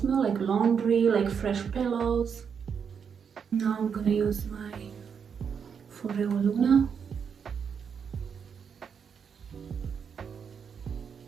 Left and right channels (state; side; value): quieter; left; 6.9 dB